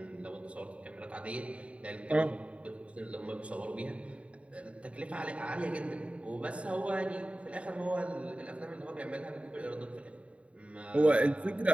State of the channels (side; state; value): left; late; 0.063 ms